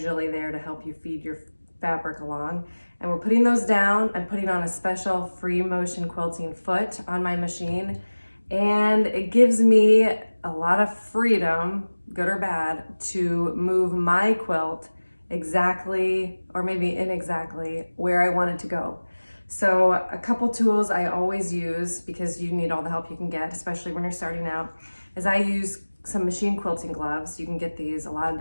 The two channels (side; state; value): both; inverted; correlation -1.00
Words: there to help you feed your fabric along. And we're putting those down. I'm putting on a special free motion quilting foot on my machine. And it gives me a lot of freedom, good or bad, to move my quilt exactly, or maybe inexactly, where I want it to go. So a couple tools I always use, because you need all the help you can get, especially when you're starting out, is I use some machine quilting gloves. You can get these a lot of